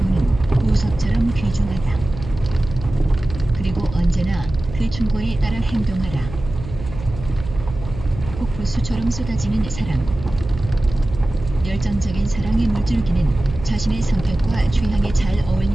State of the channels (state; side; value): noise; right; hum, 11 dB below the sound